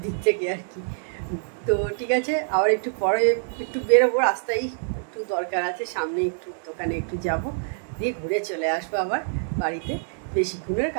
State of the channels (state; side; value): silent; left; digital silence